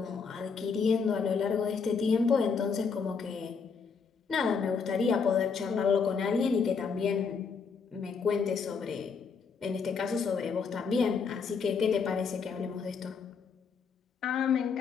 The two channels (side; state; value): right; quieter; 5.6 dB